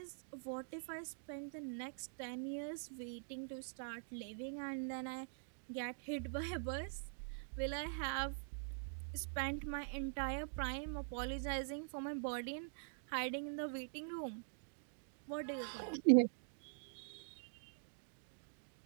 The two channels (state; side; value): silent; left; digital silence